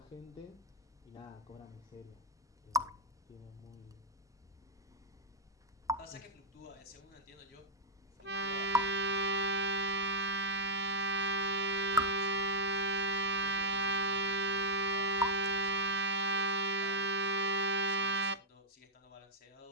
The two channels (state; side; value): normal; both; correlation -0.07